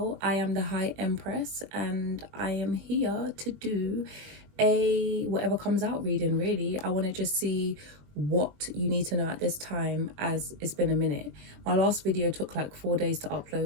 I am the High Empress and I am here to do a whatever comes out reading. Really, I want to just see what you need to know at this time, as it's been a minute. My last video took like 4 days to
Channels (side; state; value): left; late; 20 ms